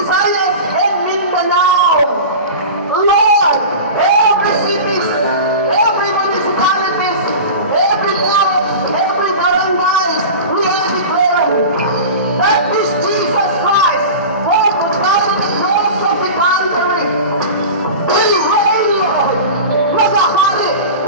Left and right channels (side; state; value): both; inverted; correlation -0.32